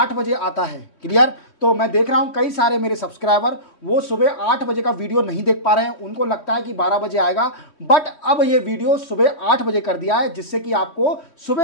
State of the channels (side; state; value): right; late; 3.2 ms